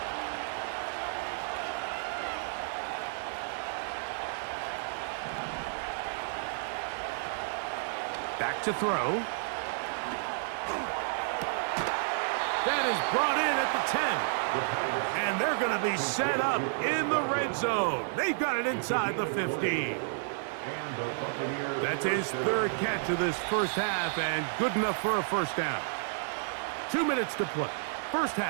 Back to throw. That is brought in at the 10. And they're going to be set up in the red zone. They've got it inside the 15. That's his third catch of this first half and good enough for a first down. 2 minutes to play. First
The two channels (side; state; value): left; silent; 56 dB below the other